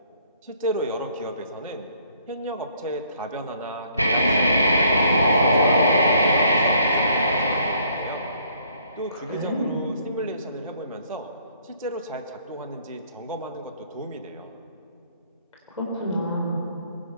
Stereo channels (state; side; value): inverted; both; correlation -0.64